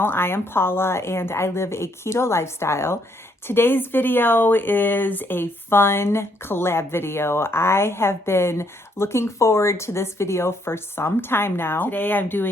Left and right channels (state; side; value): normal; both; correlation 0.71